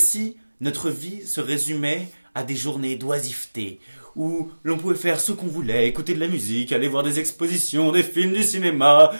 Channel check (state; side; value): inverted; both; correlation -1.00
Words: notre vie se résumait à des journées d'oisiveté, où l'on pouvait faire ce qu'on voulait, écouter de la musique, aller voir des expositions, des films, du cinéma,